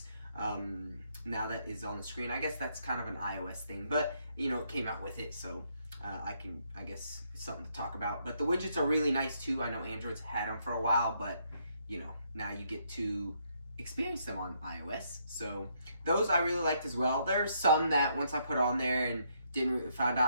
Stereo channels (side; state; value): both; inverted; correlation -0.73